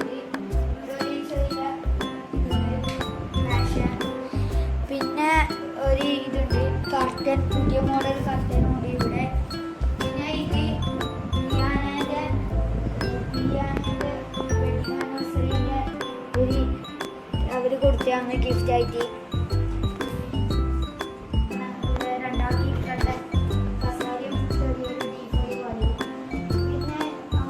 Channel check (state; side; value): identical; both; correlation 1.00